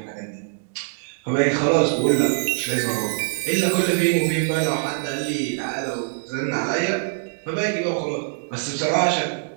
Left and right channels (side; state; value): left; silent; digital silence